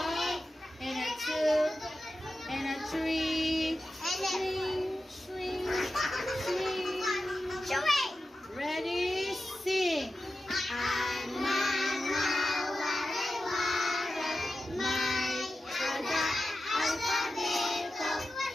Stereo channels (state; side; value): normal; both; correlation 0.92